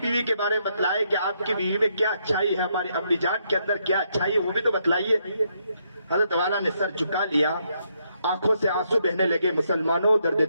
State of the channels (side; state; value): both; inverted; correlation -0.76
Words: کے بارے میں بتلائیں کہ آپ کی بیوی میں کیا اچھائی ہے، ہماری امی جان کے اندر کیا اچھائی ہے، وہ بھی تو بتلائیے۔ حضرت والا نے سر جھکا لیا، آنکھوں سے آنسو بہنے لگے۔ مسلمانوں درد